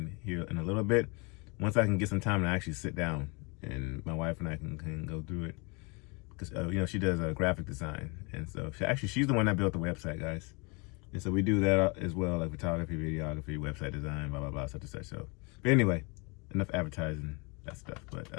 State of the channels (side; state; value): right; quieter; 30.1 dB